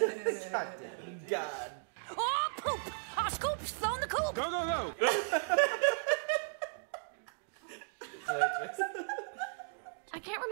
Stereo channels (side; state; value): left; silent; digital silence